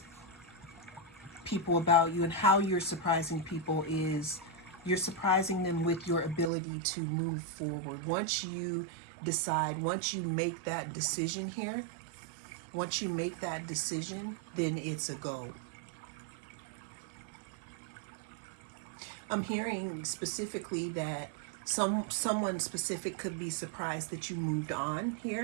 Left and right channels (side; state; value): left; drops out; at 6.5 s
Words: people about you and how you're surprising people is you're surprising them with your ability to move forward. Once you decide, once you make that decision here, once you make that decision, then it's a go. I'm hearing specifically that someone specific could be surprised that you moved on